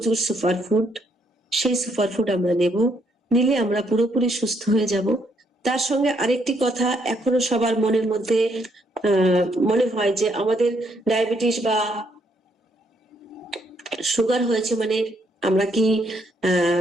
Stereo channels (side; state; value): both; normal; correlation 0.72